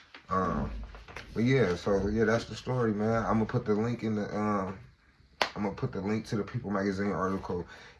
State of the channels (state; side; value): identical; both; correlation 1.00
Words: But yeah, that's the story, man. I'm gonna put the link in the to the People Magazine article